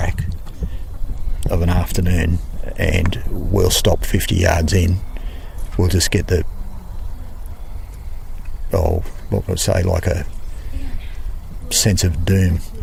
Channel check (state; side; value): identical; both; correlation 1.00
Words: of an afternoon, and we'll stop 50 yards in. We'll just get the what would I say, like a sense of doom.